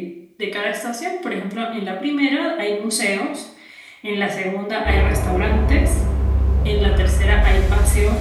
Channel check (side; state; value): both; identical; correlation 1.00